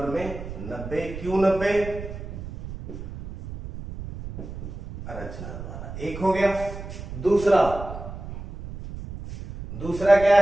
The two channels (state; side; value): noise; right; rumble, 10 dB below the sound